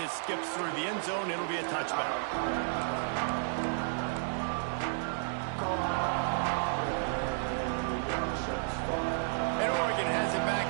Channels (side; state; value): left; silent; digital silence